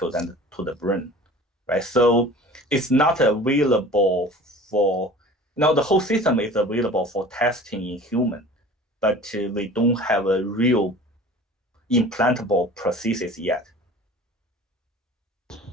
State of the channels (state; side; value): normal; both; correlation 0.42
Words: and to the brain, right? So it's not available for the whole system is available for testing in human, but we don't have a real implantable prosthesis yet.